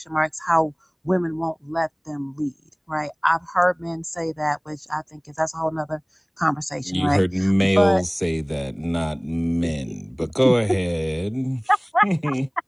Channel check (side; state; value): both; identical; correlation 1.00